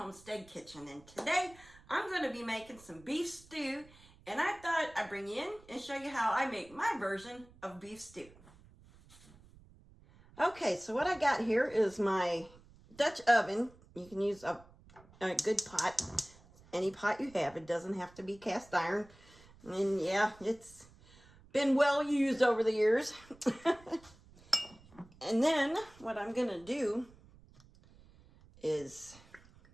Kitchen, and today I'm going to be making some beef stew, and I thought I'd bring you in and show you how I make my version of beef stew. Okay, so what I got here is my Dutch oven. You can use a good pot, any pot you have. It doesn't have to be cast iron, and yeah, it's been well used over the years. And then what I'm going to do is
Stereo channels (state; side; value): noise; right; rumble, 24 dB below the sound